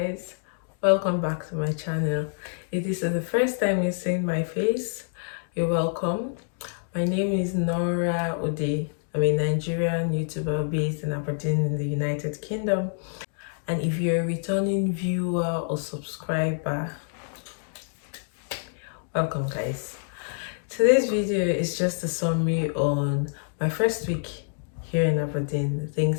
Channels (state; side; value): silent; right; digital silence